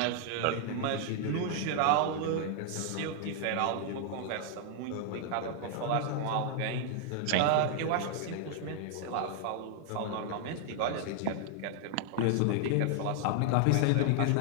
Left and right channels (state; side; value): different; both; correlation 0.00